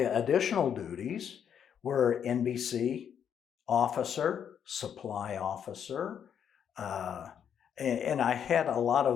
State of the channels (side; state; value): right; quieter; 8.4 dB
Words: duties were NBC officer, supply officer, and I had a lot